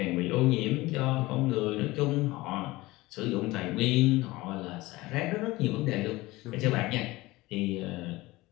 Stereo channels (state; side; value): quieter; right; 20.1 dB